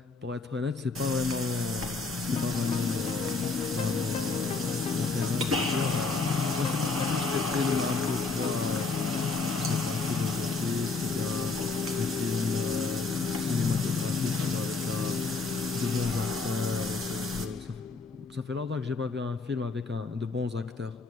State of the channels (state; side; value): quieter; right; 4.0 dB